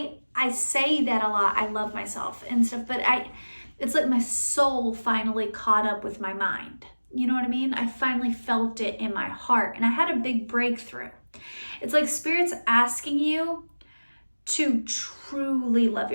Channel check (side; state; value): both; inverted; correlation -1.00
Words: say that a lot, I love myself and stuff, but it's like my soul finally caught up with my mind. You know what I mean? I finally felt it in my heart, and I had a big breakthrough. It's like Spirit's asking you to truly love